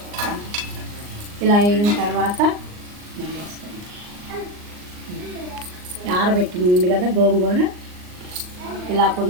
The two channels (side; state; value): left; late; 39 ms